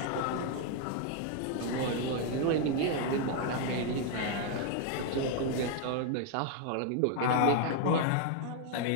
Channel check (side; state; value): both; different; correlation 0.00